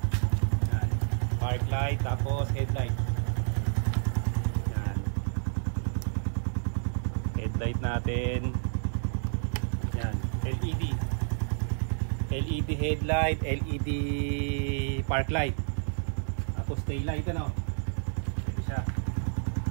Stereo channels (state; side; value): silent; left; digital silence